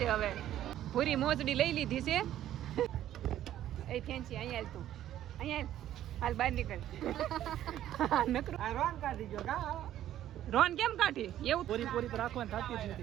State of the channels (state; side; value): quieter; left; 12.2 dB